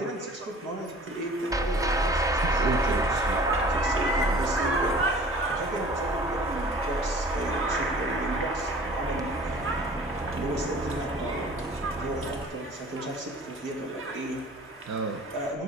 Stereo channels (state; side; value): normal; both; correlation 0.47